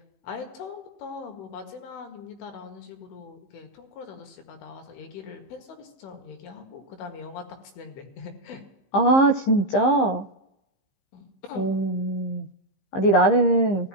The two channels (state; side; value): late; right; 15 ms